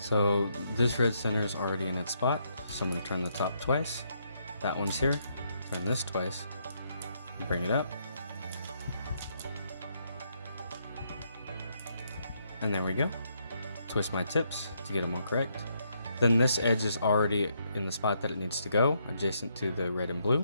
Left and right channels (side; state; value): both; inverted; correlation -0.75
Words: So this red center is already in its spot, so I'm going to turn the top twice. That one's here, turn this twice, bring it up. And there we go. Twist my tips to get them all correct. Then this edge is already in the spot that it needs to go, adjacent to the red and blue,